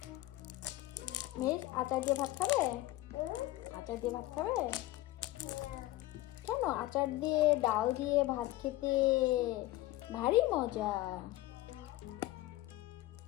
মেয়ের আচার দিয়ে ভাত খাবে? আচার দিয়ে ভাত খাবে? কেন? আচার দিয়ে ডাল দিয়ে ভাত খেতে ভারী মজা।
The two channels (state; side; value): quieter; right; 17.1 dB